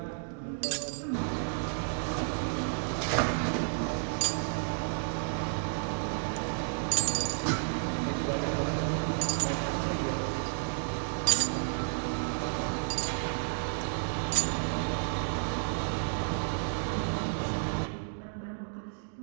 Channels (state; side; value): silent; left; digital silence